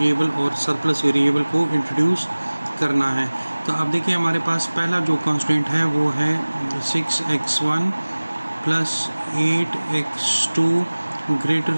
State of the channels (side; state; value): both; inverted; correlation -1.00